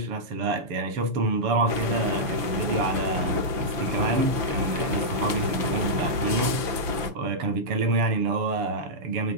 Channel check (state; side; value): late; left; 6.0 ms